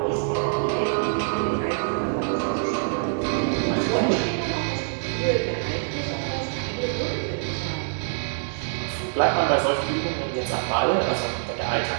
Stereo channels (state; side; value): silent; left; digital silence